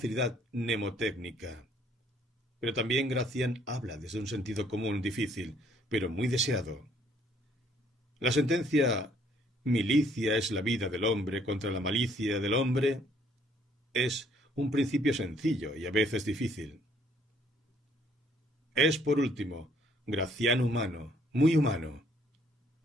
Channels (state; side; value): normal; both; correlation 0.64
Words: mnemotécnica. Pero también Gracián habla desde un sentido común difícil, pero muy deseado. La sentencia milicia es la vida del hombre contra la malicia del hombre es un principio sencillo y a veces difícil. Es, por último, Gracián humano, muy humano.